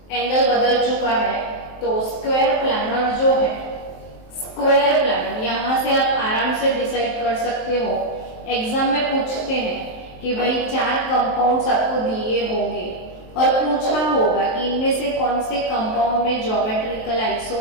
एंगल बदल चुका है। तो स्क्वायर प्लानर जो है, स्क्वायर प्लानर यहां से आप आराम से डिसाइड कर सकते हो। एग्जाम में पूछते हैं कि भाई 4 कंपाउंड्स आपको दिए होंगे और पूछा होगा कि इनमें से कौन से कंपाउंड में ज्योमेट्रिकल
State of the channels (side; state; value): right; late; 23 ms